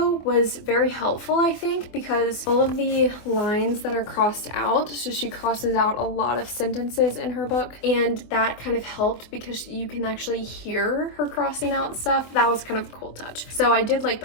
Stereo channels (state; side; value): late; right; 24 ms